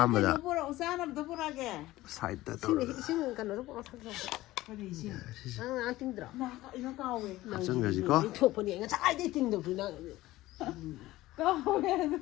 mà đã Nó bora usana nó bora cái. side đó Xin cái nó bora thằng. ꯀꯔꯤ ꯏꯁꯤꯡ ꯅꯪ ꯇꯤꯡꯗ꯭ꯔꯣ ꯑꯩꯅ ꯀꯥꯎꯋꯦ ꯍꯥꯞꯆꯟꯈ꯭ꯔꯁꯤꯀꯣ ꯊꯣꯛꯄꯅꯦ ꯉꯁꯥꯏꯗꯩ ꯇꯤꯡꯗꯕꯁꯨ ꯅꯪ ꯀꯥꯎꯋꯦ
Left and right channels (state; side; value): quieter; right; 17.0 dB